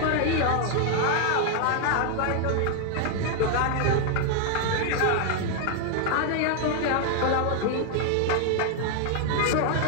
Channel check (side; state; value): both; different; correlation 0.00